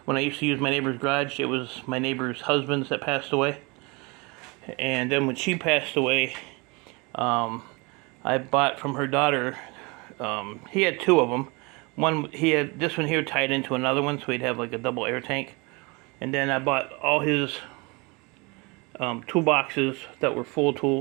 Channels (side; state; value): left; quieter; 27.7 dB